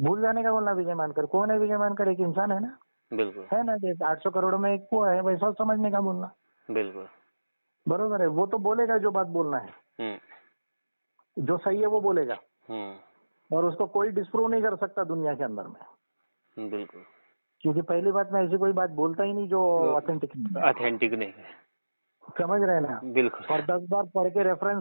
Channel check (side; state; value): both; inverted; correlation -1.00